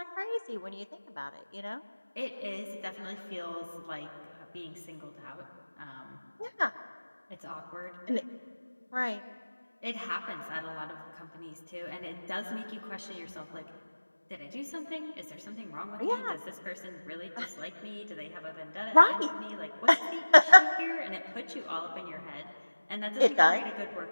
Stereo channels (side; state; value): both; inverted; correlation -1.00